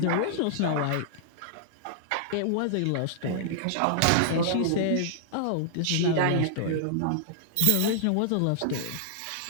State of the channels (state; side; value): different; both; correlation -0.01